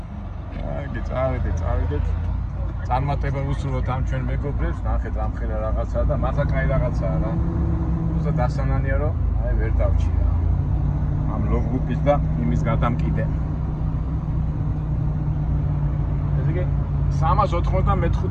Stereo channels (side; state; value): both; identical; correlation 1.00